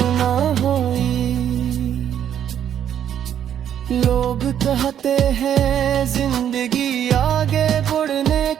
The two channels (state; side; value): quieter; left; 9.7 dB